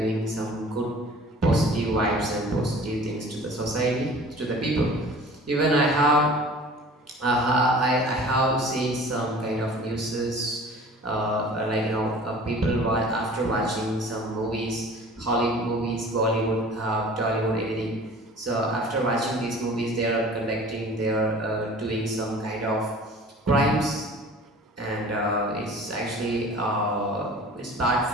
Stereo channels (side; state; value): both; normal; correlation 0.45